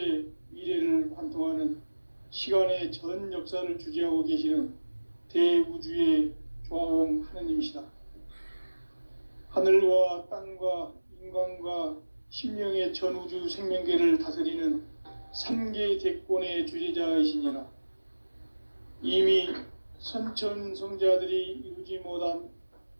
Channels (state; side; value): inverted; both; correlation -1.00